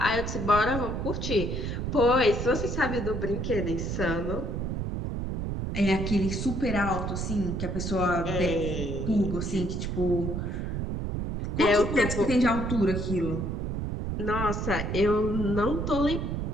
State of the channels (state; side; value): noise; right; rumble, 3 dB below the sound